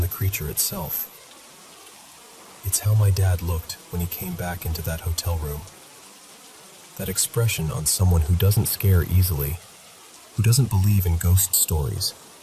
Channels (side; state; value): both; identical; correlation 1.00